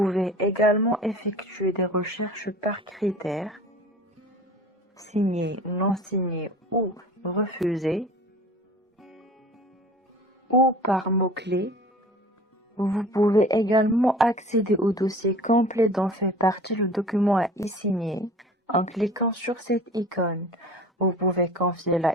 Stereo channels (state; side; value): normal; both; correlation 0.42